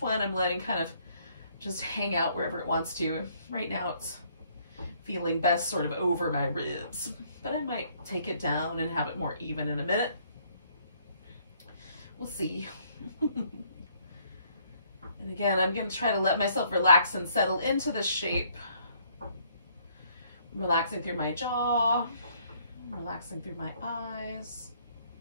one I'm letting kind of just hang out wherever it wants to. Right now it's feeling best sort of over my ribs, but I might take it down and have it more even in a minute. We'll see. And again, I'm going to try to let myself relax and settle into the shape. I'm relaxing through my jaw, relaxing through my eyes,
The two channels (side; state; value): both; inverted; correlation -0.65